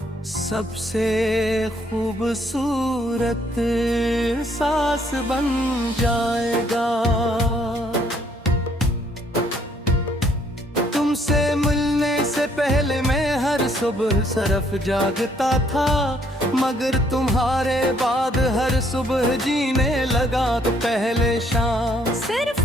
सबसे खूबसूरत सांस बन जाएगा। तुमसे मिलने से पहले मैं हर सुबह सरफ जागता था, मगर तुम्हारे बाद हर सुबह जीने लगा तो पहले शाम सिर्फ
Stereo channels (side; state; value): both; normal; correlation 0.67